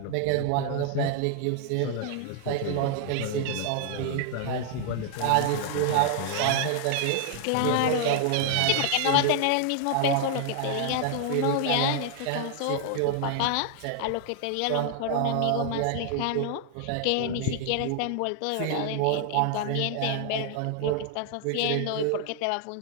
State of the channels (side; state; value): both; different; correlation 0.00